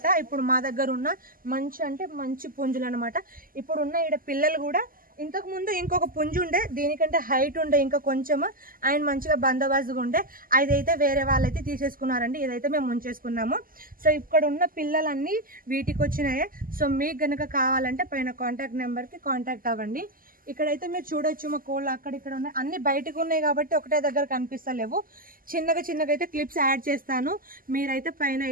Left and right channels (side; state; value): left; late; 0.41 ms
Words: ఇప్పుడు మా దగ్గర ఉన్న మంచి పుంజులు అనమాట. ఇప్పుడు ఉన్న ఈడ పిల్లలు కూడా ఇంతకు ముందు ఇంకొక పుంజు ఉండే, దీనికంటే హైట్ ఉండే ఇంకా కొంచెం, అండ్ మంచిగా బందోబస్తుగా ఉండే. అదైతే వేరే వాళ్ళైతే తీసేసుకున్నారండి. ఇదైతే మేము ఉంచేసుకున్నాము. సో ఇక్కడ ఉన్న పిల్లలన్నీ వీటికి వచ్చినాయే. సో మీకు గనక కావాలంటే పైన కాంటాక్ట్ నెంబర్కి కాంటాక్ట్ అవ్వండి. ఇక్కడైతే మీరు చూడొచ్చు మా కోళ్ళు అక్కడిక్కడ ఉన్నాయి, అన్ని బయటకు ఉన్నాయి కాబట్టి ఒకటే దగ్గర కనిపిస్తలేవు. చిన్నగా అయితే క్లిప్స్ యాడ్ చేస్తాను, మీరైతే పైన